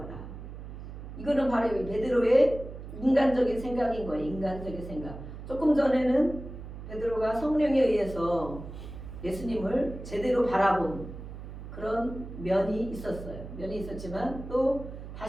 이거는 바로 베드로의 인간적인 생각인 거예요. 인간적인 생각. 조금 전에는 베드로가 성령에 의해서 예수님을 제대로 바라본 그런 면이 있었어요. 면이 있었지만 또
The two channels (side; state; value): right; noise; hum, 11 dB below the sound